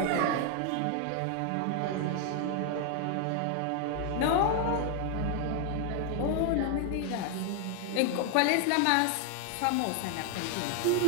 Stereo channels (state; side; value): different; both; correlation 0.00